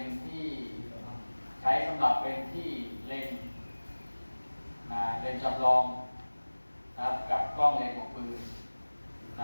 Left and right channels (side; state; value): both; inverted; correlation -1.00